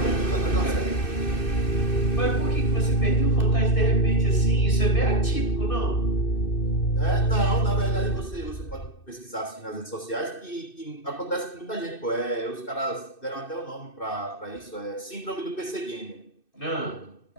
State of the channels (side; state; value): right; late; 2.6 ms